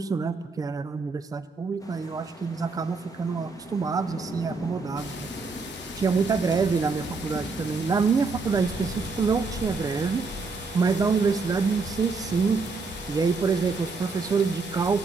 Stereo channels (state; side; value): quieter; left; 4.2 dB